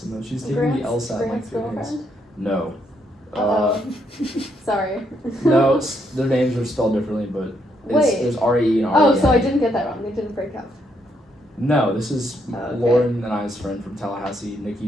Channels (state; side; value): normal; both; correlation 0.75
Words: though. She's taking Grant's, the LSAT in like Grant's 3 days. girlfriend? No. Uh-oh. Sorry. No, their names are spelled differently, but Wait. there's R-E and R-E-N. Oh, so I didn't get that wrong. They didn't break up. No, this is Okay. Lauren and I's friend from Tallahassee,